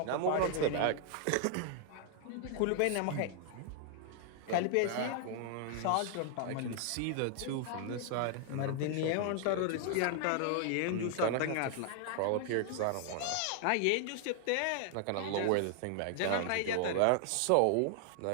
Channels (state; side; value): different; both; correlation 0.00